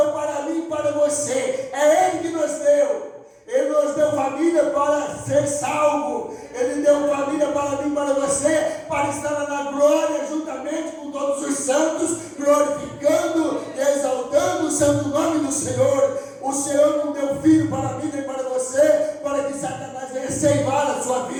para mim e para você, é Ele que nos deu. Ele nos deu família para ser salvo. Ele deu família para mim e para você, para estar na glória juntamente com todos os santos, glorificando e exaltando o santo no nome do Senhor. O Senhor não deu filho para mim nem para você, para que Satanás venha ceifar a sua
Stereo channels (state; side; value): identical; both; correlation 1.00